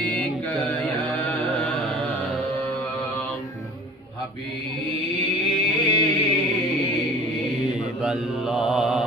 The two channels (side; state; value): both; normal; correlation 0.45